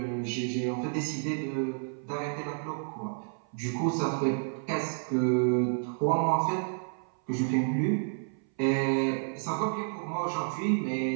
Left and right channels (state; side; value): silent; left; 58 dB below the other